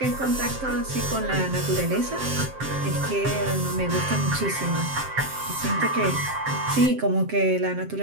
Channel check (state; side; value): late; left; 7.6 ms